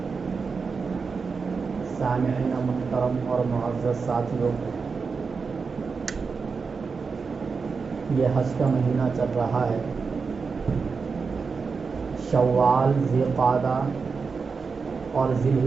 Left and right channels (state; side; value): quieter; left; 5.0 dB